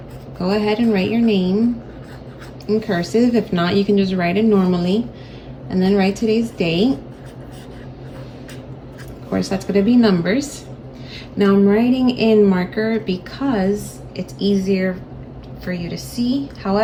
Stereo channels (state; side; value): identical; both; correlation 1.00